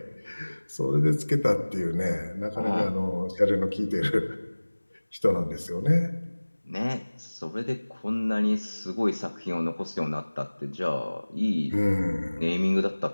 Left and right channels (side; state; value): both; inverted; correlation -1.00